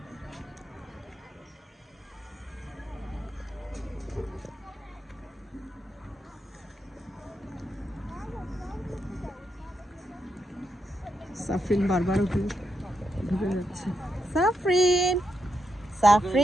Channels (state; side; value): normal; both; correlation 0.83